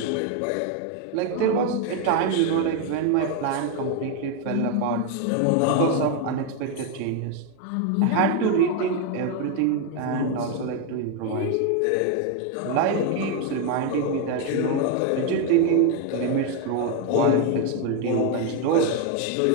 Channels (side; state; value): both; different; correlation 0.01